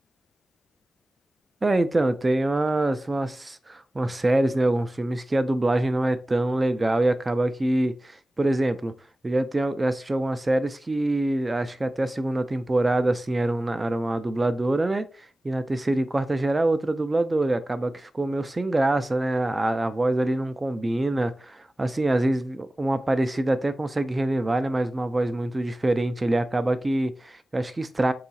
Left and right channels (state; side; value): normal; both; correlation 0.97